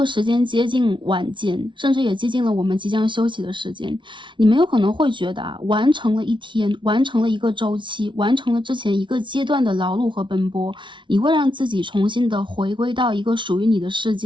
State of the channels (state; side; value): late; left; 0.24 ms